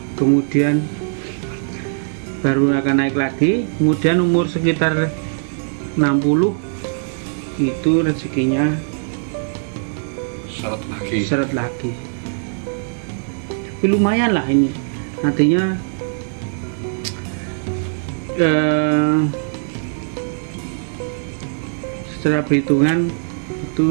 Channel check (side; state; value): left; silent; 64 dB below the other